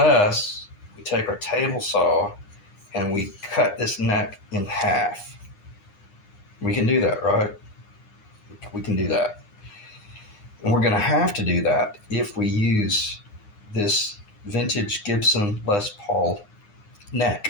take our table saw and we cut this neck in half. We can do that, right? We can do that. And we're going to have to do that if we use this vintage Gibson Les Paul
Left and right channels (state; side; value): late; right; 9.8 ms